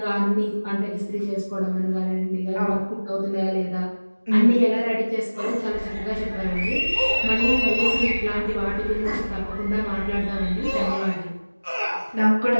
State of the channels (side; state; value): both; inverted; correlation -1.00